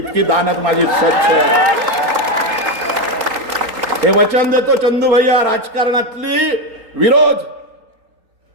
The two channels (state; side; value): late; left; 3.8 ms